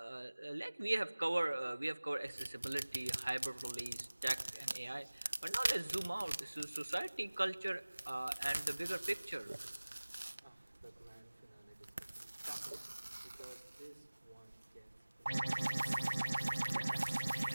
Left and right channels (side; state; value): both; inverted; correlation -1.00